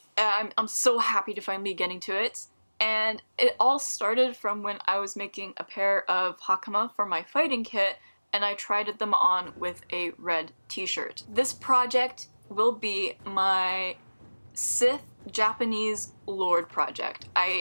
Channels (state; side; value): inverted; both; correlation -1.00